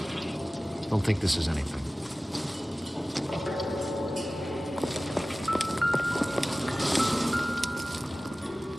Don't think this is anything.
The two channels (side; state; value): both; normal; correlation 0.97